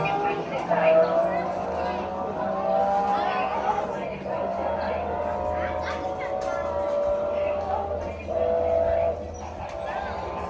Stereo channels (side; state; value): both; identical; correlation 1.00